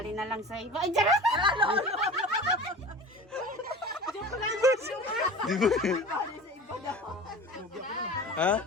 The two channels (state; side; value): normal; both; correlation 0.36